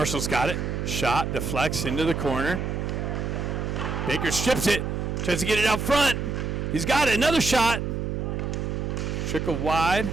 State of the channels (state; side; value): noise; right; hum, 2 dB below the sound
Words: got it. Shot, deflects into the corner. Baker strips it. Tries to get it out front. He's got it. Another shot. Trickle wide.